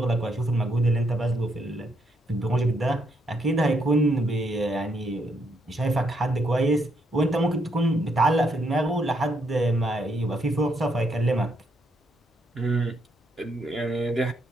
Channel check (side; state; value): both; normal; correlation 0.75